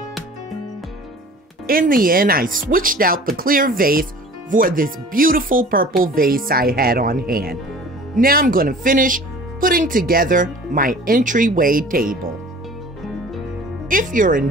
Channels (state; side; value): normal; both; correlation 0.45